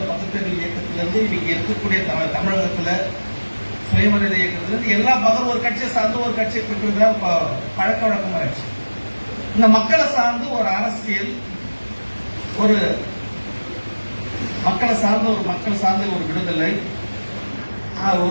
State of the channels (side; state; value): both; inverted; correlation -1.00